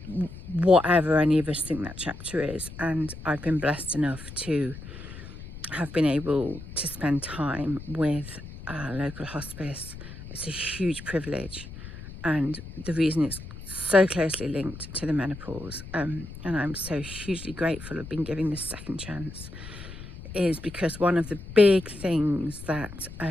whatever any of us think that chapter is. And I've been blessed enough to have been able to spend time with a local hospice. It's a huge privilege, and the reason it's so closely linked to the menopause, and I'm so hugely grateful of being given this second chance, is because one of the big things that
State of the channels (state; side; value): noise; left; rumble, 13 dB below the sound